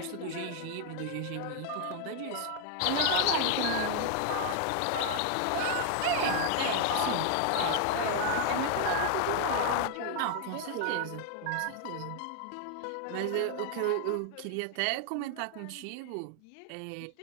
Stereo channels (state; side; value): different; both; correlation 0.00